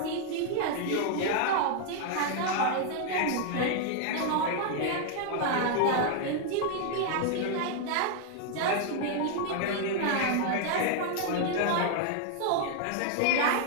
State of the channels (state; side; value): different; both; correlation 0.00